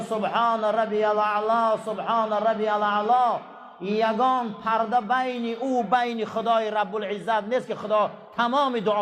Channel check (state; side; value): identical; both; correlation 1.00